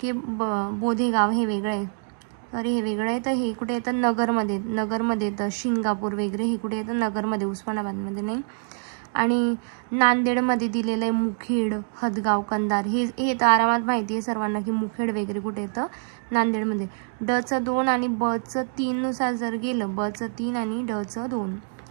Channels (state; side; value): silent; left; 61 dB below the other